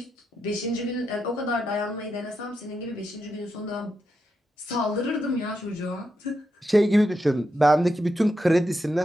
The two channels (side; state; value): both; normal; correlation 0.85